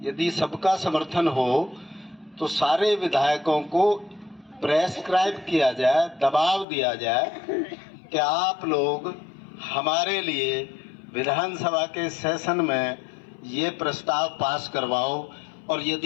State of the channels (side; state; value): right; drops out; at 6.7 s